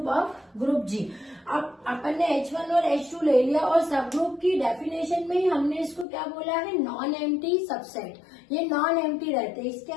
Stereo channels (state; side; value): drops out; right; at 6.1 s